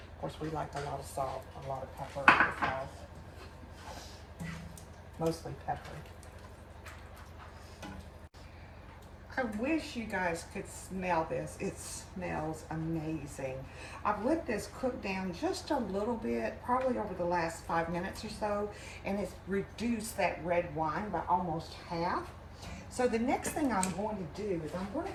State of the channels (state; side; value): identical; both; correlation 1.00